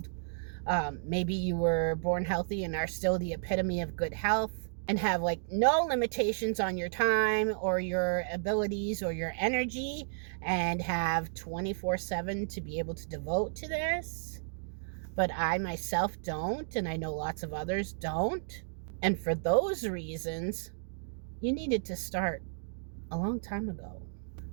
Maybe you were born healthy and are still the epitome of good health and have like no limitations on your time or your abilities or your energy and have 24/7 to be able to devote to this. But I myself don't, and I know lots of others don't. And for those reasons, you needed to start a long time ago.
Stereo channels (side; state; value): left; silent; digital silence